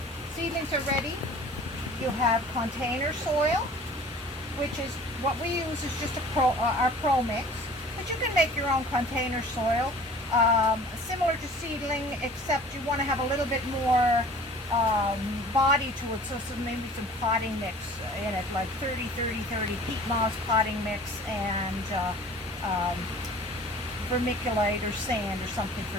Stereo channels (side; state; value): both; normal; correlation 0.46